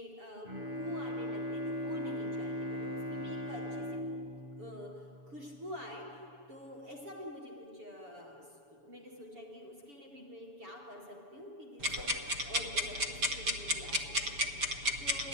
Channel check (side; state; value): left; late; 7.0 ms